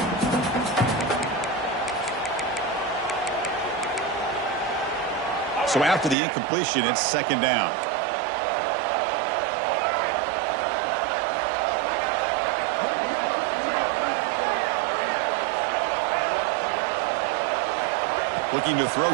So after the incompletion, it's second down. Looking to throw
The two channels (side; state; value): left; drops out; at 6.2 s